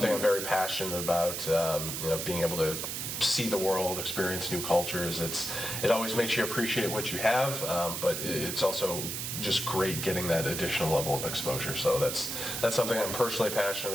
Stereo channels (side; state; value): right; noise; hiss, 4 dB below the sound